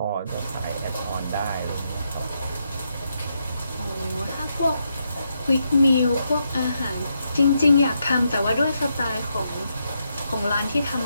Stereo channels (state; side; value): inverted; both; correlation -0.81